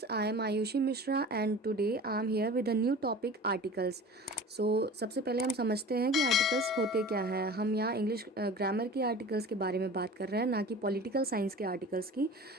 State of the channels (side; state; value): both; normal; correlation 0.39